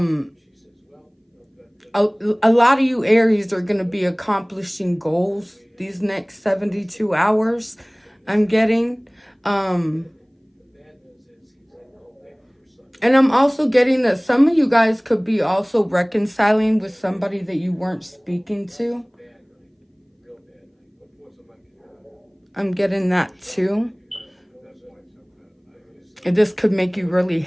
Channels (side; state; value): both; identical; correlation 1.00